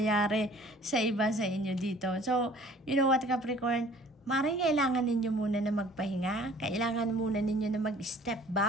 sa iba sa inyo dito. So, you know what, Capricorn? Maring kailangan ninyo muna na magpahinga. Kailangan muna ninyo na mag-step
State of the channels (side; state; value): both; normal; correlation 0.52